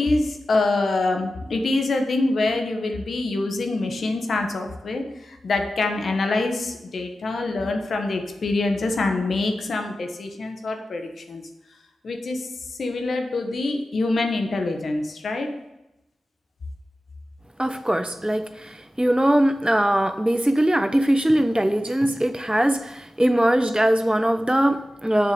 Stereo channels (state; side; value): normal; both; correlation 0.94